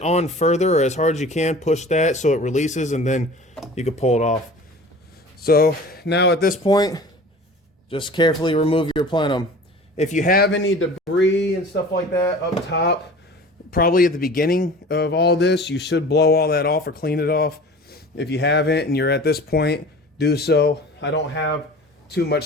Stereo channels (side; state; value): both; normal; correlation 0.41